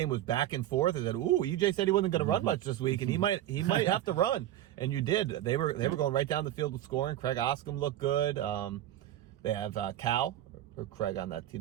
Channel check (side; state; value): left; quieter; 12.9 dB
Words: was back and forth. I said, "Ooh, EJ said he wasn't going to run much this week, and he might have to run." And you did. They were going right down the field with scoring. Craig Oscom looked good. They have Cal or Craig on that